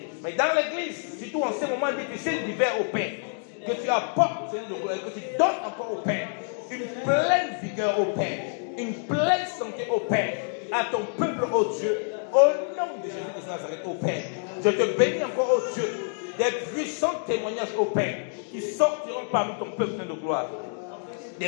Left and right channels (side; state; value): right; silent; 60 dB below the other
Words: mais dans l'église, surtout en ces moments difficiles d'hiver, au Père, que tu apportes, Seigneur de gloire, que tu donnes encore au Père une pleine vigueur, au Père, une pleine santé, au Père, à ton peuple, oh Dieu, au nom de Jésus de Nazareth, au Père. Je te bénis encore, oh Dieu, des puissants témoignages, au Père, qui sortiront parmi ton peuple de gloire.